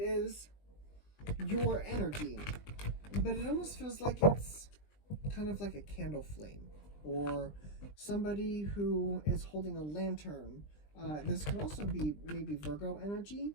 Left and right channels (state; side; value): late; right; 20 ms